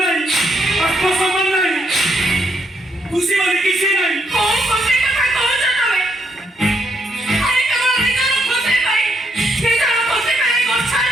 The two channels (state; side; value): normal; both; correlation 0.75